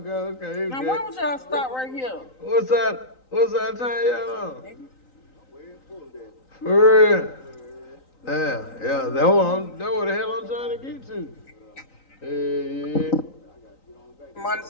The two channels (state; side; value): late; right; 3.9 ms